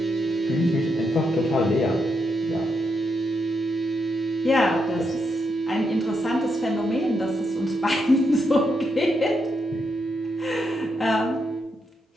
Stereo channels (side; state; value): both; normal; correlation 0.81